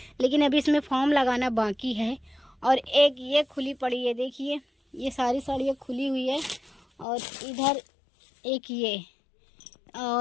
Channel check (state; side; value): drops out; right; at 7.1 s